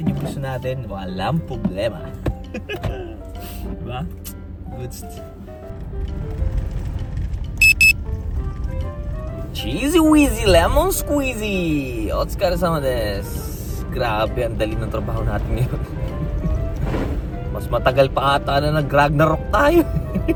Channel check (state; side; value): identical; both; correlation 1.00